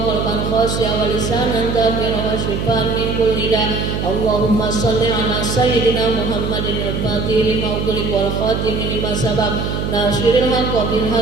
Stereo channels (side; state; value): right; noise; hum, 2 dB below the sound